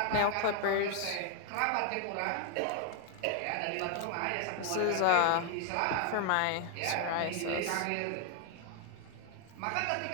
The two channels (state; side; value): different; both; correlation 0.00